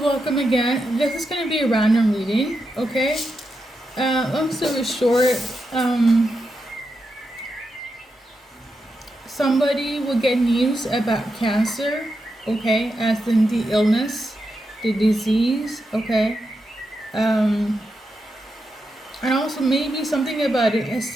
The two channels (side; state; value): both; normal; correlation 0.86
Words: welcome again. This is going to be a random reading, okay? Long story short, somebody will get news about cancer, okay, as in the illness, the disease, okay? Um, and also maybe something about an